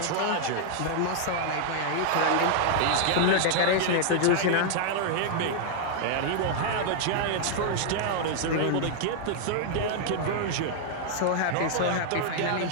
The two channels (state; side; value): different; both; correlation 0.00